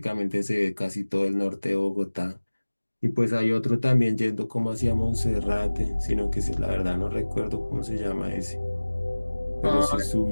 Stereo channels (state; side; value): inverted; both; correlation -1.00